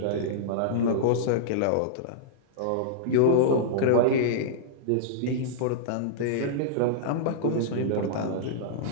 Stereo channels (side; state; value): both; different; correlation -0.02